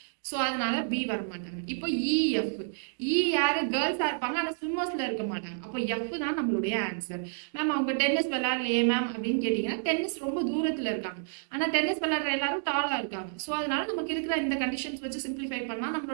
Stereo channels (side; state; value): left; silent; digital silence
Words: ஸோ அதனால பி வரமாட்டாங்க. இப்போ இஎஃப், இ யாரு, கேர்ள்ஸா இருப்பாங்க ஆனா ஸ்விம்மர்ஸ்ல இருக்க மாட்டாங்க. அப்போ எஃப் தான் நம்மளுடைய ஆன்சர். மேம் அவங்க டென்னிஸ் விளையாடலையே மேம் அப்படின்னு கேட்டீங்கன்னா, டென்னிஸ் ரொம்ப தூரத்துல இருக்காங்க, ஆனா டென்னிஸ் விளையாடுற எல்லாரும் டாலா இருக்காங்க. ஸோ அதனால நமக்கு இருக்கிற இந்த கண்டிஷன்ஸ் வச்சு சிம்பிளிஃபை பண்ணா